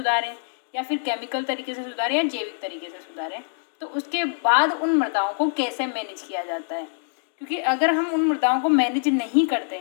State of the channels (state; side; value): silent; right; digital silence